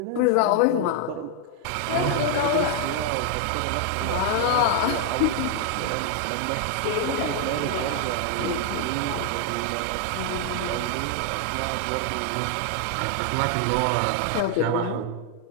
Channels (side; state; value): both; different; correlation 0.00